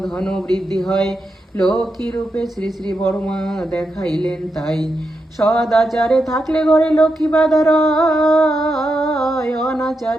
ধন বৃদ্ধি হয়, লক্ষ্মী রূপে শ্রী শ্রী বড়মা দেখাইলেন তাই। সদাচারে থাকলে ঘরে লক্ষ্মী বাধা রয়,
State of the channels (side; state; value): both; normal; correlation 0.86